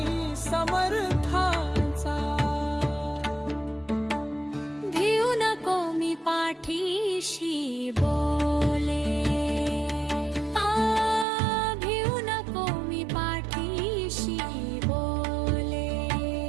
समर्थांचा भिऊ नको मी पाठीशी बोले भिऊ नको मी पाठीशी बोले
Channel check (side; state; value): left; drops out; at 11.2 s